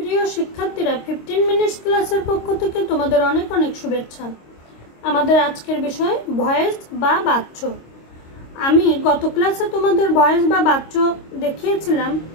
প্রিয় শিক্ষার্থীরা 15 মিনিটস ক্লাসের পক্ষ থেকে তোমাদের অনেক অনেক শুভেচ্ছা। আমাদের আজকের বিষয় ভয়েস বা বাচ্য। আমি গত ক্লাসে তোমাদের ভয়েস বা বাচ্য দেখিয়েছিলাম,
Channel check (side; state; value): right; late; 26 ms